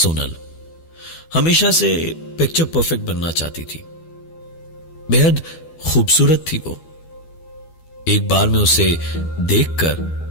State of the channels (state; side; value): late; right; 12 ms